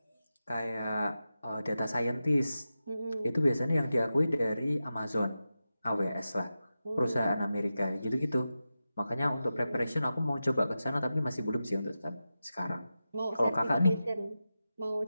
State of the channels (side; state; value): both; inverted; correlation -0.92